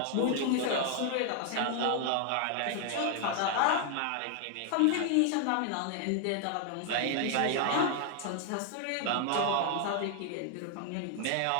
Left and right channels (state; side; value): different; both; correlation 0.00